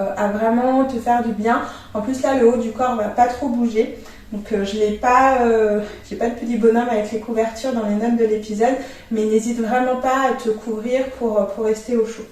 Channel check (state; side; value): identical; both; correlation 1.00